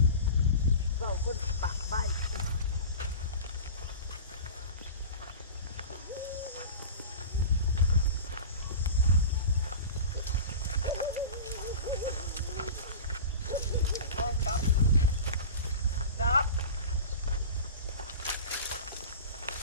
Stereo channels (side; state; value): both; inverted; correlation -0.33